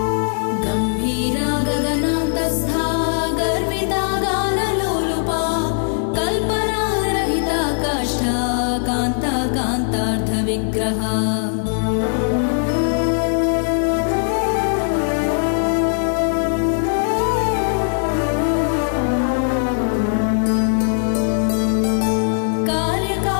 गम्भीरा गगनान्तस्था गर्विता गानलोलुपा कल्पनारहिता काष्ठा कान्ता कान्तार्धविग्रहा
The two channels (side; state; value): right; silent; digital silence